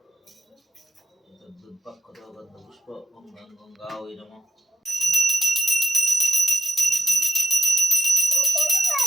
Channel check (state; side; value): normal; both; correlation 0.84